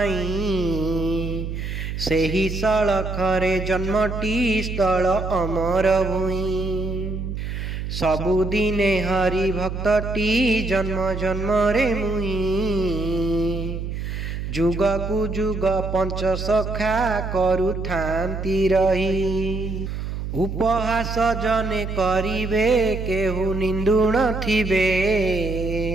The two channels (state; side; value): noise; right; hum, 5 dB below the sound